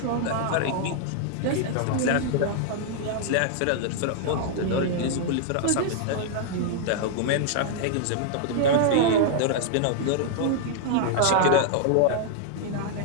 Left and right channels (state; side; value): different; both; correlation -0.01